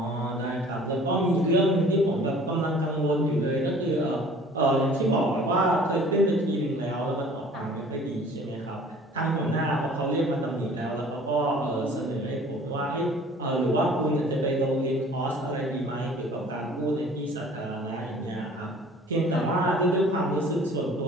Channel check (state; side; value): normal; both; correlation 0.50